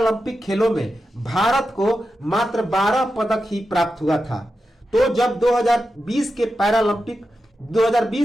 खेलों में भारत को मात्र 12 पदक ही प्राप्त हुआ था। तो जब 2020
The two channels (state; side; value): normal; both; correlation 0.90